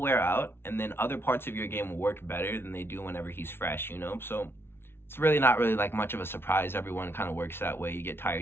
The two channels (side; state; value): right; late; 0.11 ms